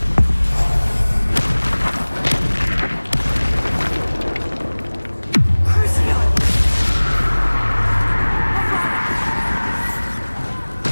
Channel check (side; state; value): both; inverted; correlation -1.00